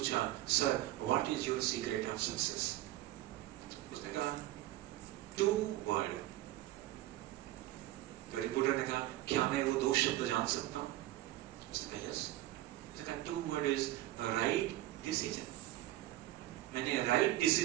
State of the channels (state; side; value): quieter; left; 15.5 dB